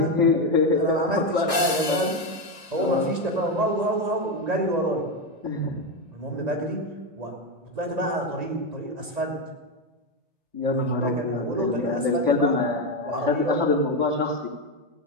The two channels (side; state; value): left; late; 1.6 ms